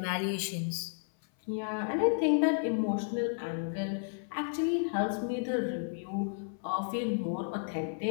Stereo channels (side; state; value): right; silent; 56 dB below the other